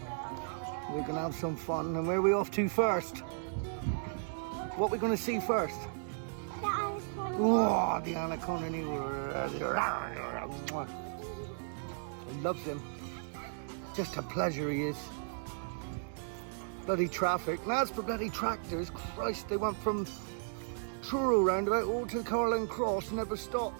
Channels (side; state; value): left; silent; digital silence